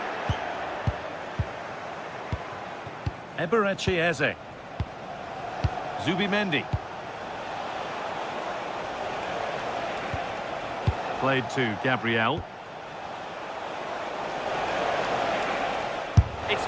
Eberechi Eze. Zubimendi. Played to Gabriel. It's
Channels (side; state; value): both; identical; correlation 1.00